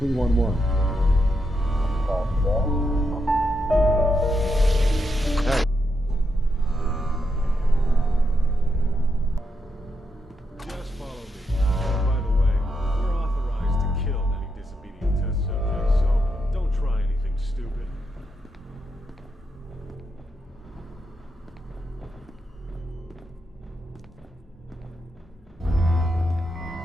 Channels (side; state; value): both; normal; correlation 0.83